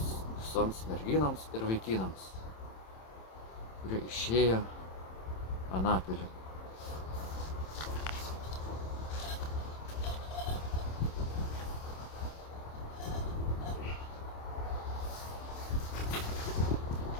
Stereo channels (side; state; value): right; late; 27 ms